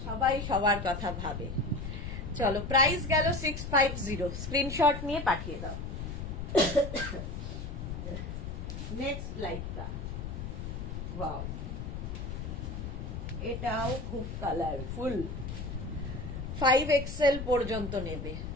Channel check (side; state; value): left; noise; rumble, 6 dB below the sound